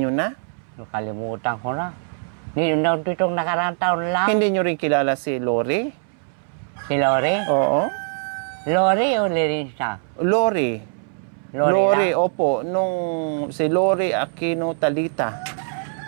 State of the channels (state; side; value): silent; left; 64 dB below the other